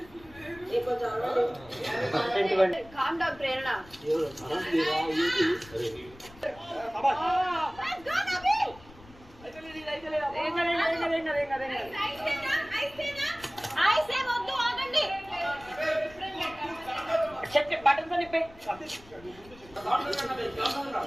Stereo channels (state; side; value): noise; left; rumble, 22 dB below the sound